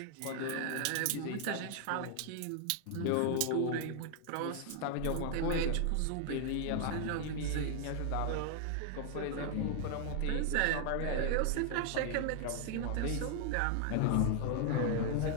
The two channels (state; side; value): different; both; correlation 0.00